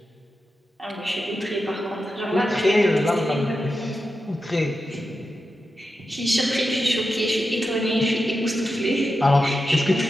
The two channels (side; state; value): both; normal; correlation 0.90